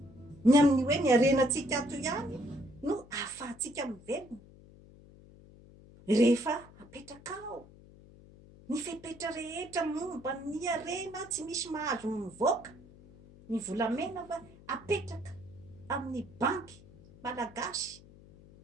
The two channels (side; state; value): left; noise; hum, 22 dB below the sound